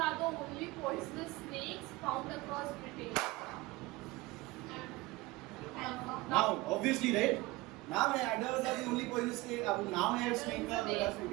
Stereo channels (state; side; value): quieter; left; 20.4 dB